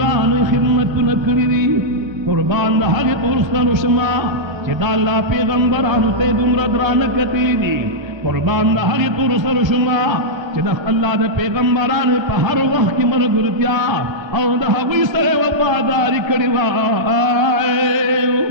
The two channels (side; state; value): left; late; 1.3 ms